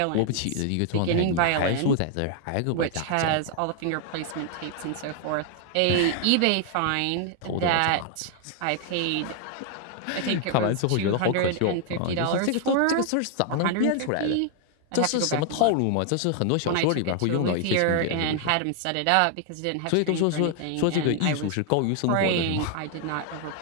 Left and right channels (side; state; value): both; different; correlation 0.00